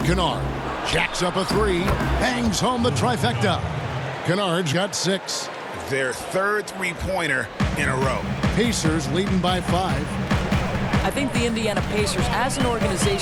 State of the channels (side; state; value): both; identical; correlation 1.00